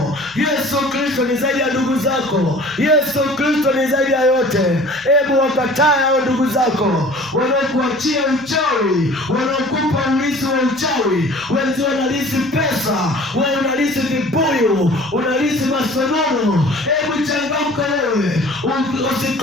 Yesu Kristo ni zaidi ya ndugu zako. Yesu Kristo ni zaidi ya yote. Hebu wakataa hao ndugu zako wanaokuachia uchawi, wanaokupa urithi wa uchawi. Wenzi wanalisi pesa, wewe unalisi vibuyu, unalisi masonono. Hebu changamka wewe,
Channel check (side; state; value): left; noise; hum, 30 dB below the sound